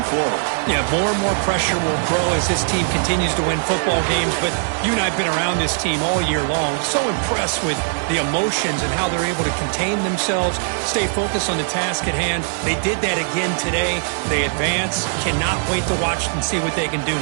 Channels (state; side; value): silent; left; digital silence